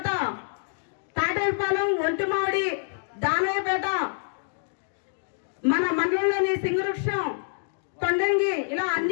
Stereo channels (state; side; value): silent; right; digital silence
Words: తాటేపాలెం, ఒంటిమామిడి, దానయ్యపేట, మన మండలంలోని సింగవృక్షం, కొండంగి ఇలా